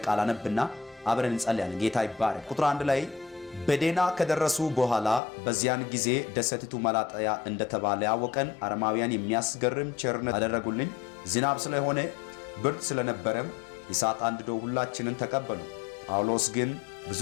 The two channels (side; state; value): right; drops out; at 5.2 s